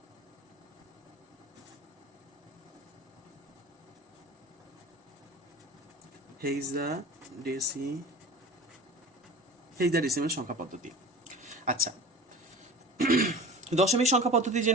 হেক্সাডেসিমেল সংখ্যা পদ্ধতি। আচ্ছা, দশমিক সংখ্যা পদ্ধতি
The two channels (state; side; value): normal; both; correlation 0.37